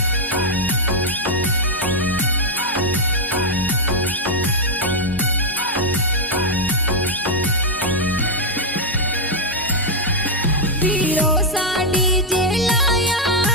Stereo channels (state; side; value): normal; both; correlation 0.00